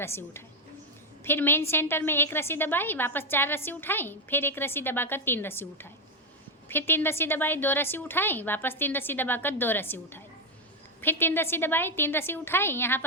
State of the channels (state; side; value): normal; both; correlation 0.05